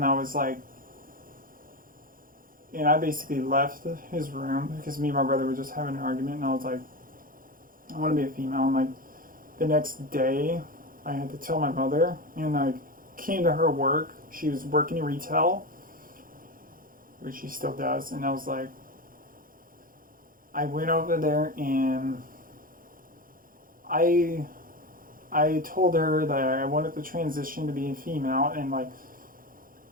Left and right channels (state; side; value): late; left; 0.41 ms